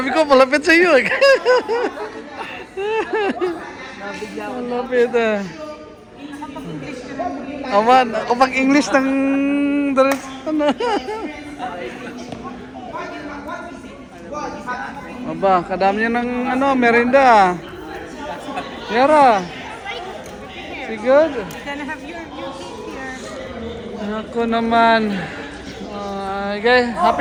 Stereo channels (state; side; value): identical; both; correlation 1.00